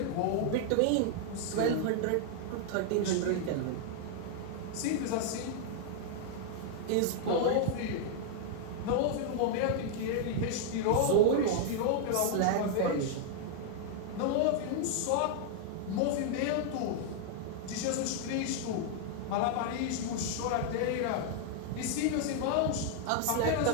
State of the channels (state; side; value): different; both; correlation 0.00